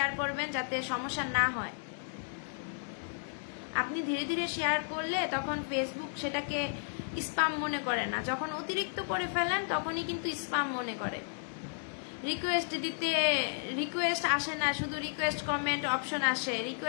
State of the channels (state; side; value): silent; right; digital silence